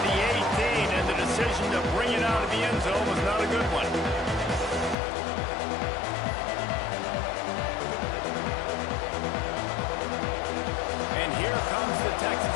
the 18, and the decision to bring it out of the end zone was not a good one. And here comes the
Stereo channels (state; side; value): drops out; right; at 5.0 s